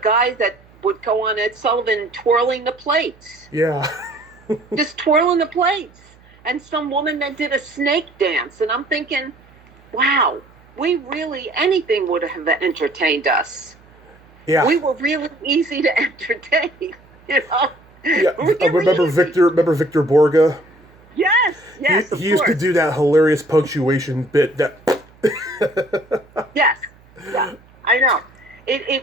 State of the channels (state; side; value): noise; right; hum, 28 dB below the sound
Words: guy that would go on Ed Sullivan twirling the plates. Yeah. Just twirling the plates. And some woman that did a snake dance. And I'm thinking, wow, anything would have entertained us. Yeah. We were really easy to entertain, Yeah. Really Remember Victor Borga? Yes. He used to do that hilarious punctuation bit that. Yes. Yeah, I know.